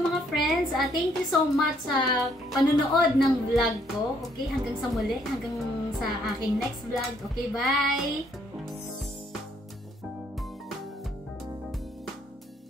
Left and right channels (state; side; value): normal; both; correlation 0.68